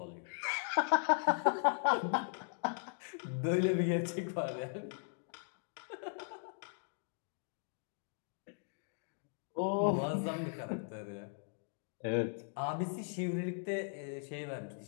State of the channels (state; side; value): silent; right; digital silence